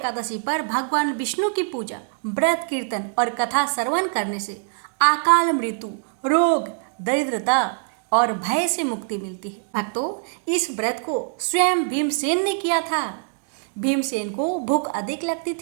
पर भगवान विष्णु की पूजा, व्रत, कीर्तन और कथा श्रवण करने से अकाल मृत्यु, रोग, दरिद्रता और भय से मुक्ति मिलती है। भक्तों, इस व्रत को स्वयं भीमसेन ने किया था। भीमसेन को भूख अधिक लगती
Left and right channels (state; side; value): silent; left; 63 dB below the other